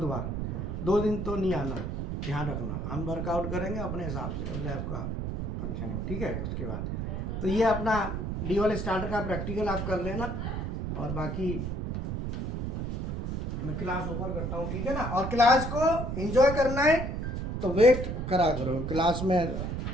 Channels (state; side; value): noise; right; rumble, 3 dB below the sound